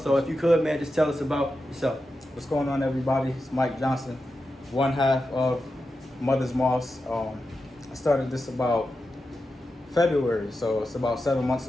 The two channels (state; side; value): normal; both; correlation 0.90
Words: if you could, man, just tell us about yourself. What's going on, everybody? It's Mike Johnson, one half of Mother's Moss. I started this about February, so it's about 7 months